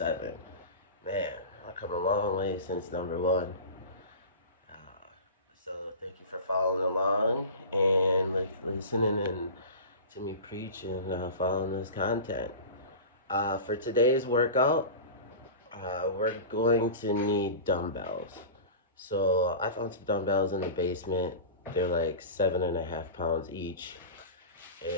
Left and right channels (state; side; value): inverted; both; correlation -0.32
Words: Man, I've come a long way since number 1. So thank you for following along and listening and to me preach and following this content. For today's workout, we're going to need dumbbells. So I found some dumbbells in the basement. They're like 7.5 pounds each.